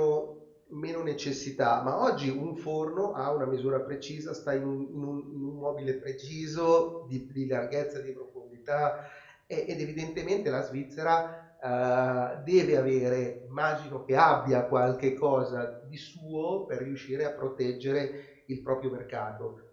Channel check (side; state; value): both; identical; correlation 1.00